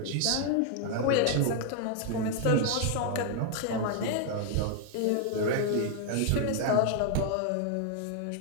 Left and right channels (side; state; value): both; different; correlation 0.00